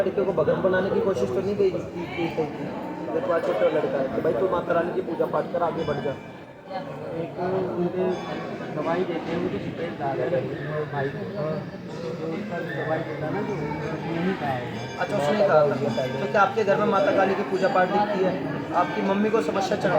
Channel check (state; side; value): identical; both; correlation 1.00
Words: को भगत बनाने की कोशिश तो नहीं की? तुम्हारा छोटा लड़का है तो भाई तू माता रानी की पूजा पाठ कर, आगे बढ़ जा। एक उनके दवाई देते हैं, मुझे पेट डाल है भाई को, जो उसका दवाई देता है ना, जो नहीं खाएगा। अच्छा, उसने कहा था तो क्या आपके घर में माता काली की पूजा पाठ दिखती है? आपकी मम्मी को समस्या चल